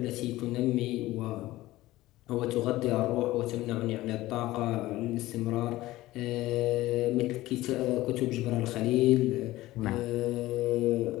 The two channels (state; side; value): quieter; right; 17.2 dB